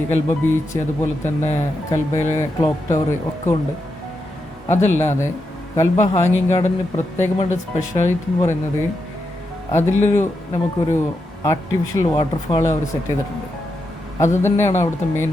കൽബ ബീച്ച്, അതുപോലെ തന്നെ കൽബയിലെ ക്ലോക്ക് ടവർ ഒക്കെ ഉണ്ട്. അതല്ലാതെ കൽബ ഹാങ്ങിങ് ഗാർഡന് പ്രത്യേകമായിട്ട് സ്പെഷ്യാലിറ്റി എന്ന് പറയുന്നത് നമുക്കൊരു ആർട്ടിഫിഷ്യൽ വാട്ടർഫാൾ അവർ സെറ്റ് ചെയ്തിട്ടുണ്ട്. അത് തന്നെയാണ് അവിടുത്തെ മെയിൻ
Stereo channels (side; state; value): both; normal; correlation 0.85